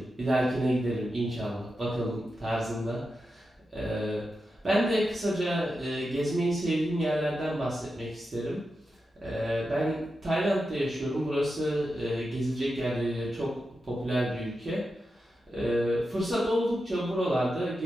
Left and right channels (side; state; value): both; normal; correlation 0.89